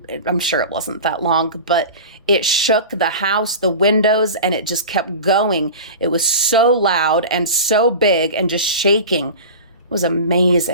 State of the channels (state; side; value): inverted; both; correlation -0.32